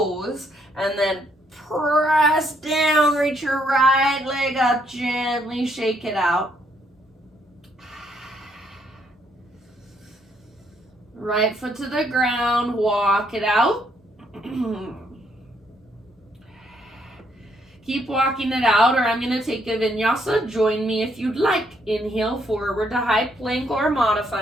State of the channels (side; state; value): both; normal; correlation 0.72